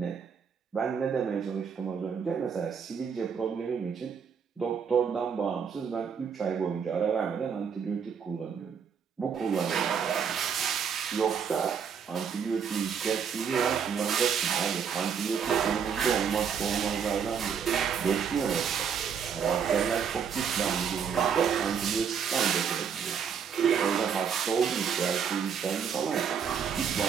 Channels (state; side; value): quieter; left; 7.0 dB